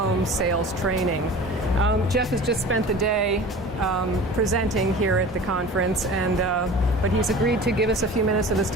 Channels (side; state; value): both; normal; correlation 0.39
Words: sales training. Jeff has just spent the day presenting here at the conference, but he's agreed to give us a few minutes of his